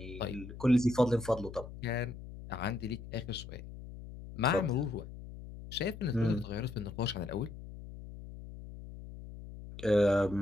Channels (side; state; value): left; noise; hum, 13 dB below the sound